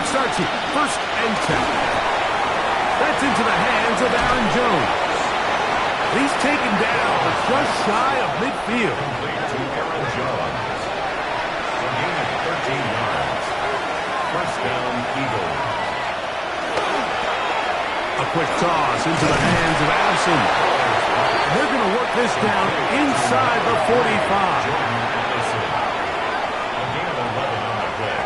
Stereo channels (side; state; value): both; identical; correlation 1.00